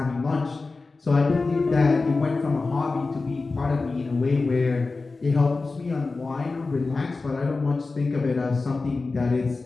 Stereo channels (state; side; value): quieter; right; 3.8 dB